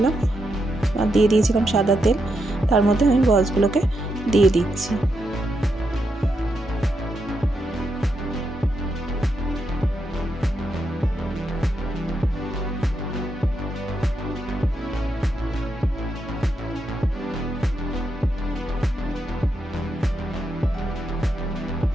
আর দিয়ে দিয়েছিলাম সাদা তেল। তার মধ্যে আমি বলসগুলোকে দিয়ে দিচ্ছি।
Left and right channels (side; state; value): both; normal; correlation 0.82